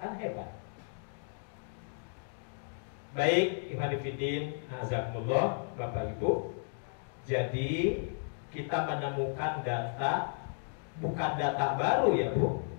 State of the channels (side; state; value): right; silent; digital silence